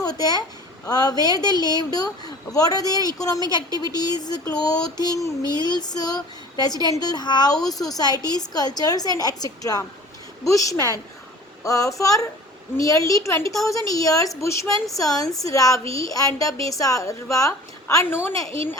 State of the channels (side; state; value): both; normal; correlation 0.44